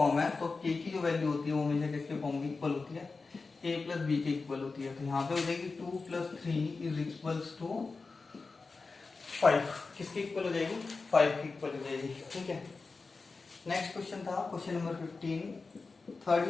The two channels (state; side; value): quieter; right; 4.1 dB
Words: है, तो के की जो वैल्यू होती है वो हमेशा किसके फॉर्म की इक्वल होती है? ए प्लस बी के इक्वल होती है। तो यहाँ पे हो जाएगी 2 प्लस 3 इज इक्वल्स टू 5। किसकी इक्वल हो जाएगी? 5 की इक्वल हो जाएगी, ठीक है। नेक्स्ट क्वेश्चन था क्वेश्चन नंबर 15, थर्ड